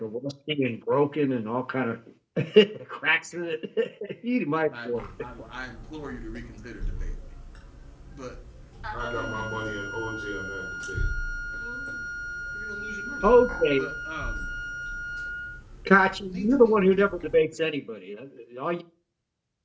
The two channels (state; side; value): identical; both; correlation 1.00